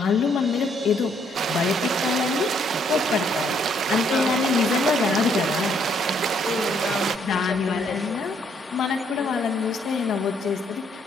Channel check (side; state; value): both; normal; correlation 0.69